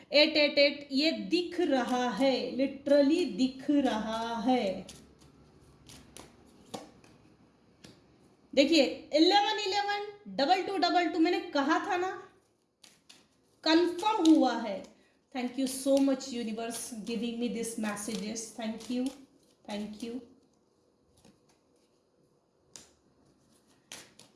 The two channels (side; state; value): both; identical; correlation 1.00